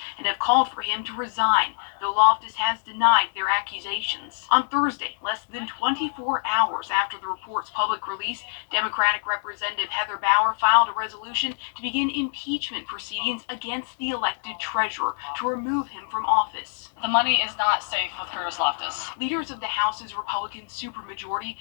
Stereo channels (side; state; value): right; silent; digital silence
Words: and have called for him to resign, though Loftus has denied their accusations. On Thursday, less than 24 hours after the report's public release, Democratic Representative Heather Bauer filed a resolution to begin impeachment proceedings against the elected treasurer to remove him from office. The money is not safe with Curtis Loftus. Leaders of the House's Republican supermajority